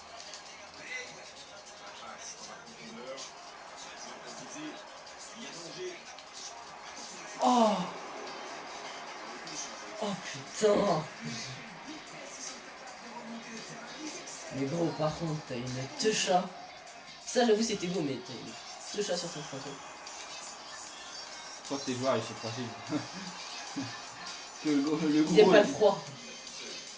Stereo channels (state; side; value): identical; both; correlation 1.00